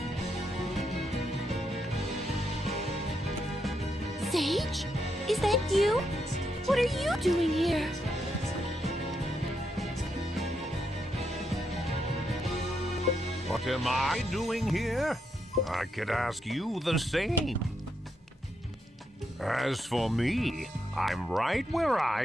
Sage? Is that you? What are you doing here? What am I doing here? I could ask you the same. As for me, I'm right where I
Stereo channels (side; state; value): both; normal; correlation 0.80